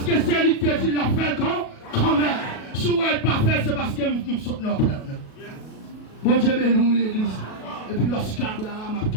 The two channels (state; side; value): late; right; 37 ms